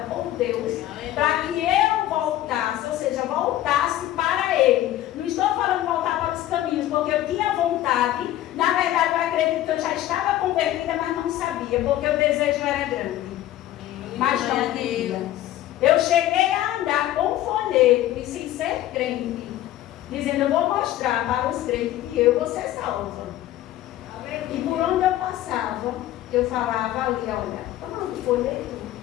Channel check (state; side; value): quieter; right; 13.8 dB